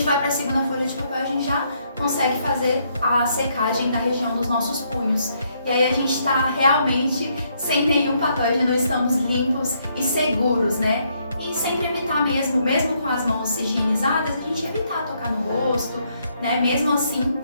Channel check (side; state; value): both; inverted; correlation -0.73